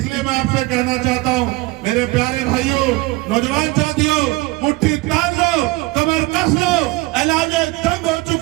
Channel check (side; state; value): left; quieter; 21.8 dB